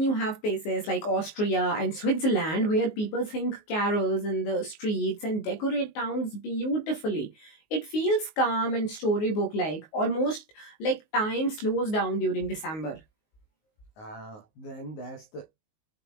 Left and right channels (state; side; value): late; right; 19 ms